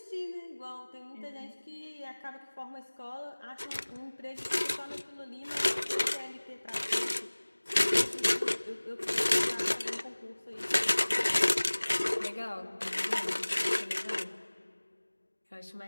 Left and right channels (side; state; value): both; inverted; correlation -1.00